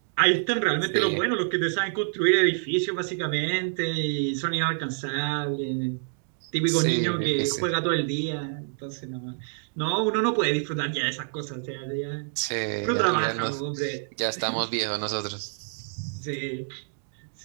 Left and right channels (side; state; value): left; silent; digital silence